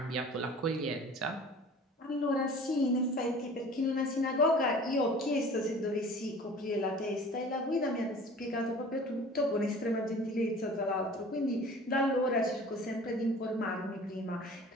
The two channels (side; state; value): both; normal; correlation 0.44